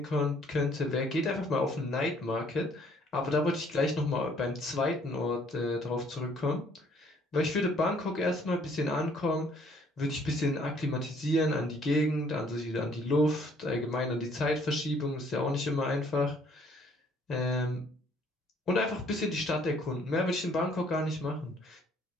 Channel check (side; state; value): both; normal; correlation 0.62